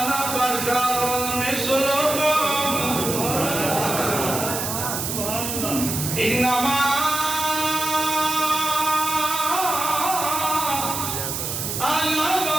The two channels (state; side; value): noise; right; hiss, 3 dB below the sound